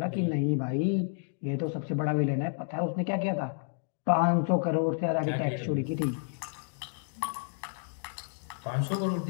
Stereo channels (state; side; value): silent; right; digital silence